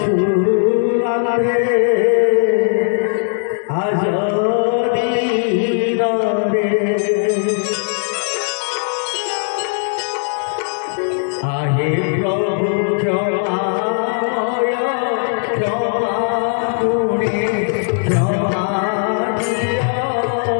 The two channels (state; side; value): silent; right; 66 dB below the other